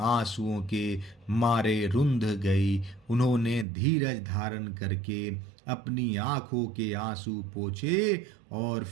के मारे रुंध गई। उन्होंने धीरज धारण करके अपनी आंखों के आंसू पोंछे और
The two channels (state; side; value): drops out; left; at 3.7 s